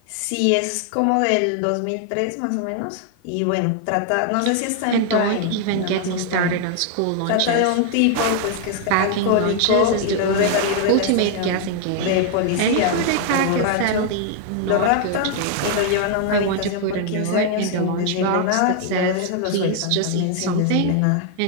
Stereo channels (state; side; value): different; both; correlation 0.00